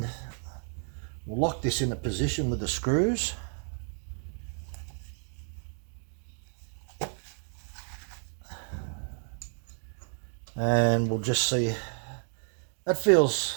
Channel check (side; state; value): left; silent; 56 dB below the other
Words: we'll lock this in a position with the screws. And we'll just see. That